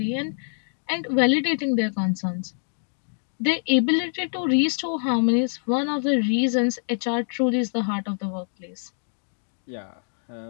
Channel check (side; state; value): right; silent; digital silence